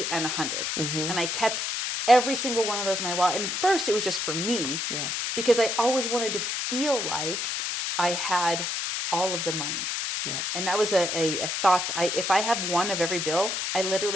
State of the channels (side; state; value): left; noise; hiss, 1 dB below the sound